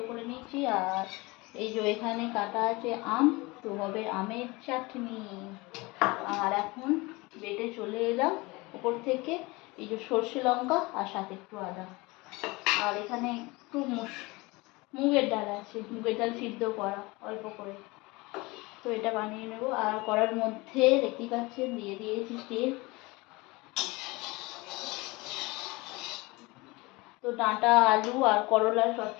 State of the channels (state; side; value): quieter; right; 23.7 dB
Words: করে নিয়েছি। আর এই যে এখানে কাটা আছে আম, তো হবে আমের চাটনি। আর এখন বেটে চলে এলাম উপর থেকে এই যে সর্ষে লঙ্কা আর সাথে একটু আদা। আর এখানে একটু মুগের ডাল আছে, মুগের ডাল সিদ্ধ করা অল্প করে, তো এটা বানিয়ে নেব। আর কড়ার মধ্যে দেখতেই পাচ্ছেন দিয়ে দিয়েছি তেল। তো ডাঁটা, আলু আর করলার